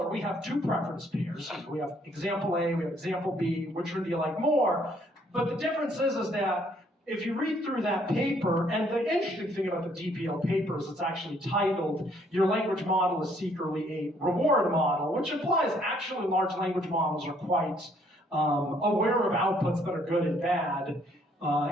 We have two preference pairs. We have example A, we have example B, which one do you like more? But the difference is that if you read through that paper, and the interesting thing about the DPO paper is it's actually titled, Your Language Model is Secretly a Reward Model, which implies actually large language models are quite aware of outputs that are good and bad.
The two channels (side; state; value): both; normal; correlation 0.66